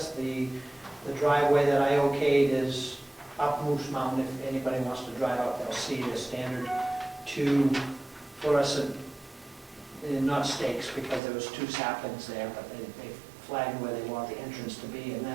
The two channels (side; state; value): left; drops out; at 11.2 s